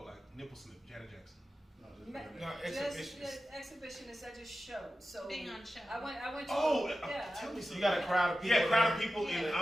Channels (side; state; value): both; normal; correlation 0.93